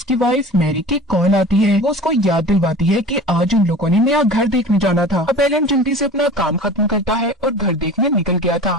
वाइफ मैरी की कॉल आती है। वो उसको याद दिलवाती है कि आज उन लोगों ने नया घर देखने जाना था। अब एलन जल्दी से अपना काम खत्म करता है और घर देखने निकल गया था,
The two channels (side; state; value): both; normal; correlation 0.38